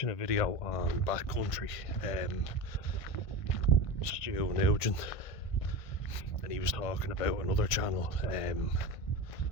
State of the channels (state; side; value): late; right; 1.5 ms